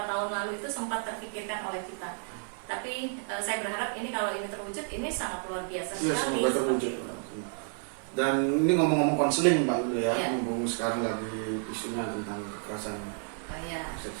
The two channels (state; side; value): silent; left; 57 dB below the other